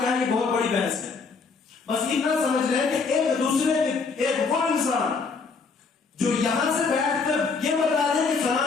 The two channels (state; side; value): quieter; right; 4.7 dB